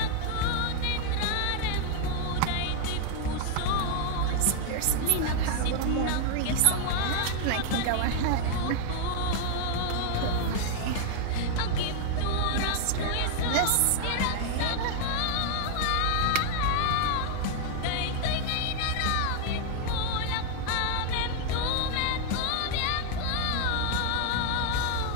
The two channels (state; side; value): different; both; correlation 0.00